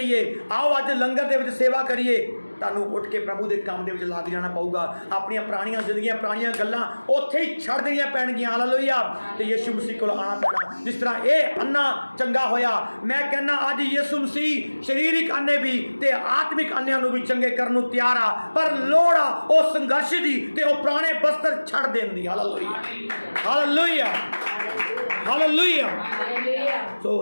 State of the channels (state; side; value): inverted; both; correlation -1.00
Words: ਆਓ ਅੱਜ ਲੰਗਰ ਦੇ ਵਿੱਚ ਸੇਵਾ ਕਰੀਏ, ਤੁਹਾਨੂੰ ਉੱਠ ਕੇ ਪ੍ਰਭੂ ਦੇ ਕੰਮ ਦੇ ਵਿੱਚ ਲੱਗ ਜਾਣਾ ਪਊਗਾ। ਆਪਣੀਆਂ ਪੁਰਾਣੀਆਂ ਜ਼ਿੰਦਗੀਆਂ, ਪੁਰਾਣੀਆਂ ਗੱਲਾਂ ਉੱਥੇ ਹੀ ਛੱਡ ਦੇਣੀਆਂ ਪੈਣਗੀਆਂ। ਹਾਲੇਲੂਇਆ। ਤੇ ਯਿਸੂ ਮਸੀਹ ਕੋਲ ਆਉਣਾ ਪੈਣਾ। ਜਿਸ ਤਰ੍ਹਾਂ ਇਹ ਅੰਨਾ ਚੰਗਾ ਹੋਇਆ, ਮੈਂ ਕਹਿੰਦਾ ਅੱਜ ਯਿਸੂ ਮਸੀਹ ਸਰੀਰਿਕ ਅੰਨੇ ਵੀ ਤੇ ਆਤਮਿਕ ਅੰਨਿਆਂ ਨੂੰ ਵੀ ਚੰਗੇ ਕਰਨ ਨੂੰ ਤਿਆਰ ਆ, ਪਰ ਲੋੜ ਆ ਉਹ ਸੰਘਰਸ਼ ਦੀ ਤੇ ਉਹ ਪੁਰਾਣੇ ਬਸਤਰ ਛੱਡ ਦੇਣ ਦੀ। ਹਾਲੇਲੂਇਆ। ਹਾਲੇਲੂਇਆ। ਹਾਲੇਲੂਇਆ। ਸੋ